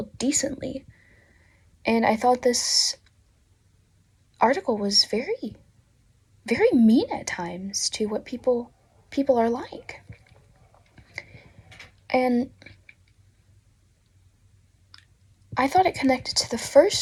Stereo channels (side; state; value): both; identical; correlation 1.00